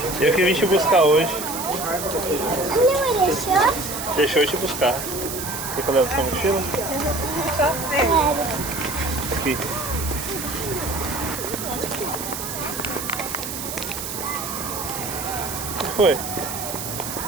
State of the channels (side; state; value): right; noise; hiss, 6 dB below the sound